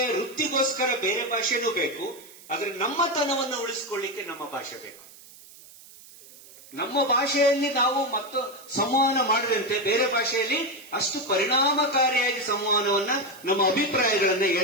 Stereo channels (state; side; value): noise; right; hiss, 21 dB below the sound